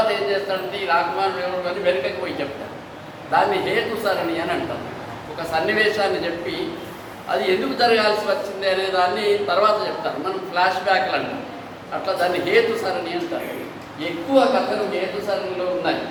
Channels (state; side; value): identical; both; correlation 1.00